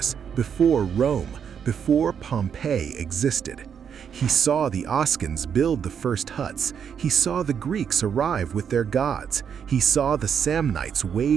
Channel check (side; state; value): left; quieter; 7.6 dB